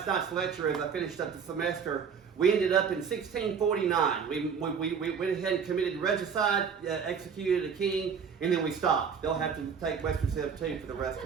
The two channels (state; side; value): quieter; left; 6.6 dB